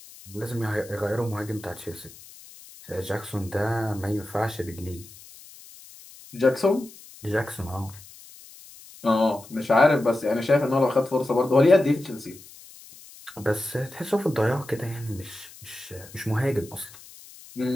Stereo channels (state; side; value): noise; left; hiss, 20 dB below the sound